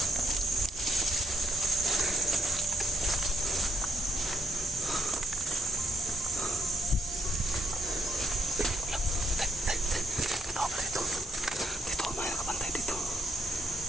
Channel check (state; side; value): normal; both; correlation 0.76